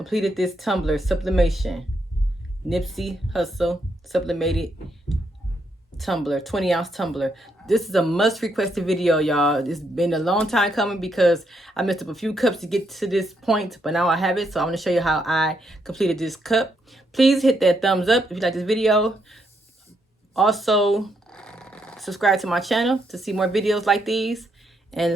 this tumbler sublimation. Nipsey Hustle sublimated tumbler, 20-ounce tumbler. This is a must requested video, y'all. It's been a long time coming because I messed up a few cups to get to this point, but now I have it. So I'm going to show you how I completed this cup. Please hit that thumbs up if you like this video. Also, subscribe to my channel to see more videos like these,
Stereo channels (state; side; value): normal; both; correlation 0.77